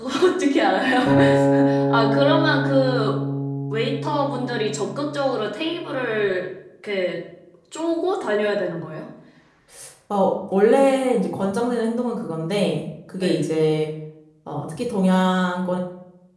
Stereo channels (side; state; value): both; identical; correlation 1.00